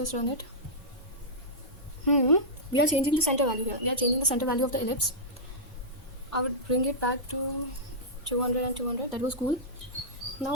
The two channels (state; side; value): normal; both; correlation -0.13